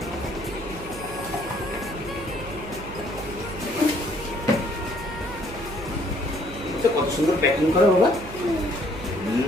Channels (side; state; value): right; noise; hum, 13 dB below the sound